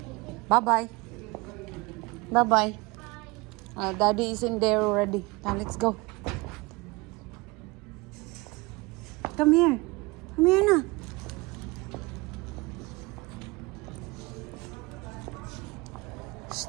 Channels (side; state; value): left; quieter; 24.3 dB